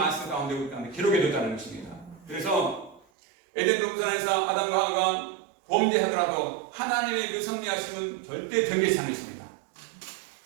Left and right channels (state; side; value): drops out; left; at 3.1 s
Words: 가운데 우리 가운데 기록해 뒀다는 것입니다. 그래서 에덴 동산에서 아담과 하와가 범죄하더라도 하나님의 그 섭리하심은 절대 변개치 않으십니다.